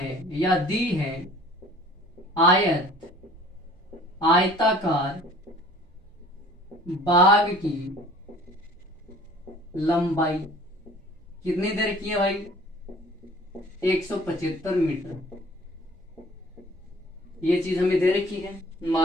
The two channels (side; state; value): both; normal; correlation 0.49